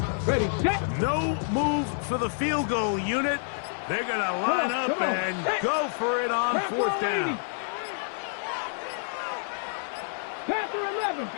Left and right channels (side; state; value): right; silent; digital silence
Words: Ready, set. No move for the field goal unit. They're going to line up and go for it on 4th down. Panther 11.